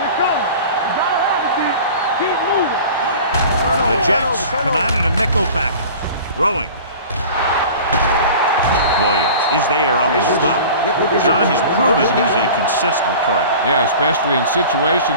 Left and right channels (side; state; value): both; inverted; correlation -0.40